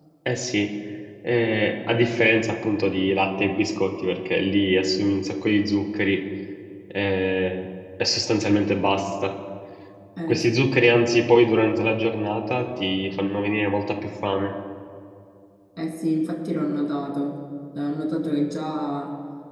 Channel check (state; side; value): identical; both; correlation 1.00